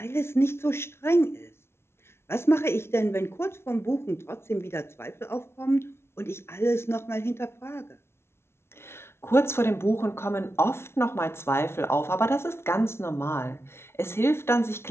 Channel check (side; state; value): right; late; 0.12 ms